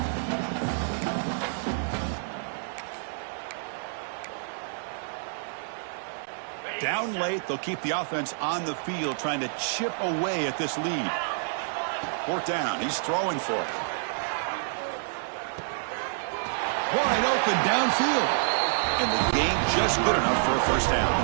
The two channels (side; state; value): left; silent; digital silence